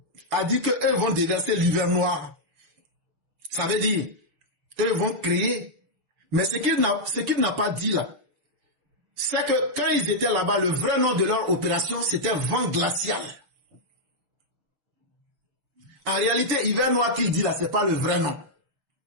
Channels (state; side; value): late; left; 7.0 ms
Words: a dit qu'eux vont déverser l'hiver noir. Ça veut dire, eux vont créer. Mais ce qu'il n'a pas dit là, c'est que quand ils étaient là-bas, le vrai nom de leur opération, c'était vent glacial. En réalité, hiver noir qu'il dit là, c'est pas le vrai nom.